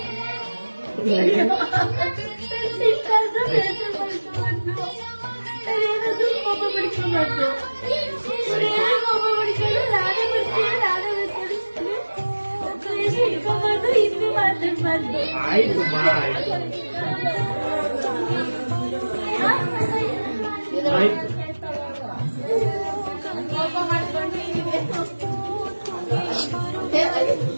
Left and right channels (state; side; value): inverted; both; correlation -1.00